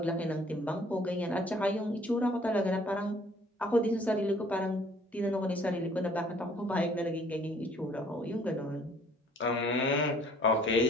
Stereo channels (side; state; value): both; normal; correlation 0.58